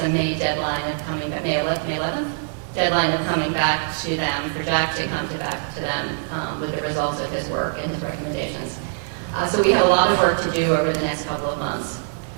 May deadline of coming back, May 11th deadline of coming back to them, for Jack to come back to them with the results of his work and his recommendations. So we have a lot of work to do over the next couple of months.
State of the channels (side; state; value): left; silent; digital silence